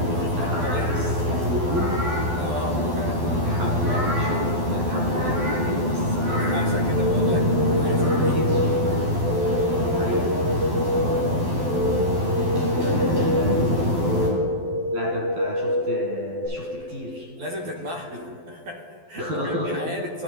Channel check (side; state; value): left; late; 12 ms